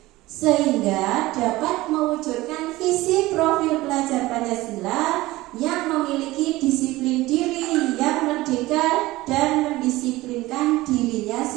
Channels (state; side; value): quieter; left; 18.6 dB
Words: sehingga dapat mewujudkan visi profil pelajar Pancasila yang memiliki disiplin diri yang merdeka dan mendisiplinkan dirinya